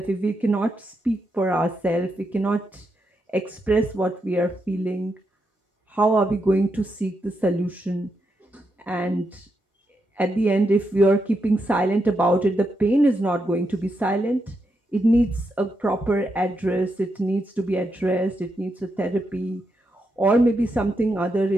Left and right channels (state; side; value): normal; both; correlation 0.83